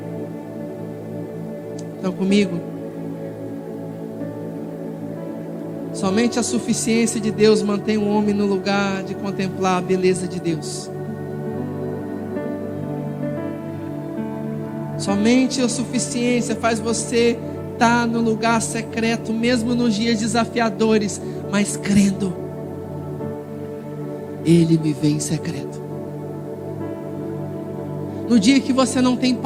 Estão comigo? Somente a suficiência de Deus mantém o homem no lugar de contemplar a beleza de Deus. Somente a suficiência faz você estar no lugar secreto, mesmo nos dias desafiadores, mas crendo. Ele me vê em secreto. No dia que você não tem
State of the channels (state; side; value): identical; both; correlation 1.00